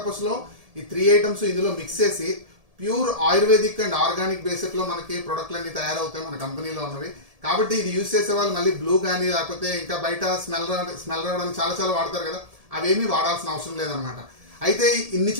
లో ఈ 3 ఐటమ్స్ ఇందులో మిక్స్ చేసి pure ayurvedic and organic basic లో మనకి ప్రొడక్ట్లు అన్ని తయారవుతాయి మన కంపెనీలో ఉన్నవి. కాబట్టి ఇది యూజ్ చేసే వాళ్ళు మళ్ళీ బ్లూ కానీ లేకపోతే ఇంకా బయట స్మెల్ రావడానికి చాలా చాలా వాడతారు కదా, అవేమీ వాడాల్సిన అవసరం లేదనమాట. అయితే ఇన్ని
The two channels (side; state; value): left; late; 1.7 ms